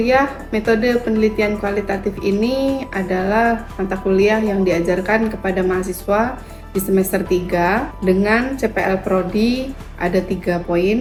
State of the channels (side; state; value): both; identical; correlation 1.00